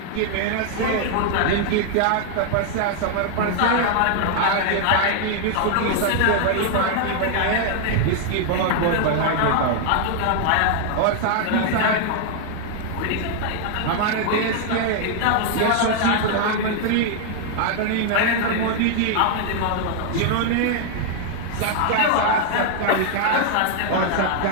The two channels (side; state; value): both; different; correlation 0.00